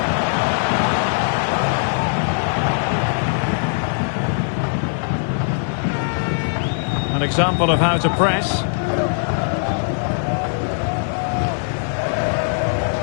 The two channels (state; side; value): silent; right; digital silence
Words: An example of how to press.